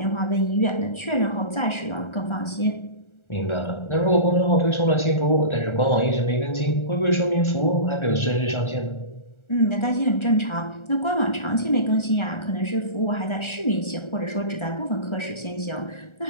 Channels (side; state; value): right; late; 1.4 ms